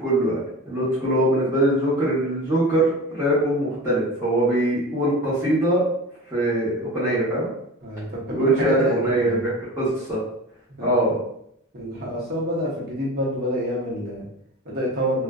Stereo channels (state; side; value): normal; both; correlation 0.33